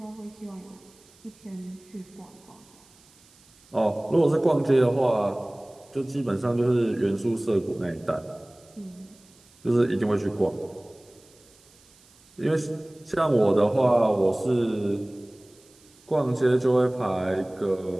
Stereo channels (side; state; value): right; noise; hiss, 28 dB below the sound